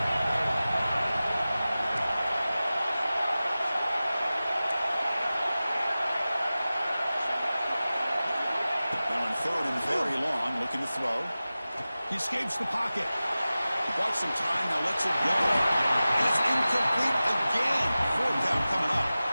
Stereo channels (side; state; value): both; inverted; correlation -0.96